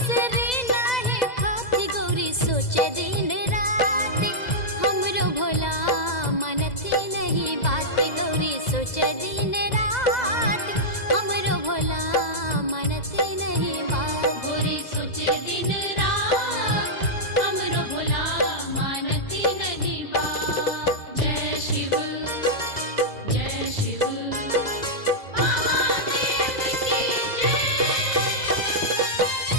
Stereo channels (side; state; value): right; late; 2.0 ms